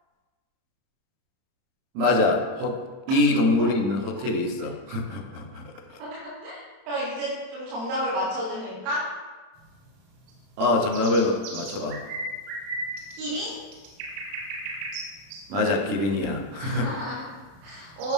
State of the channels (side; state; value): left; late; 31 ms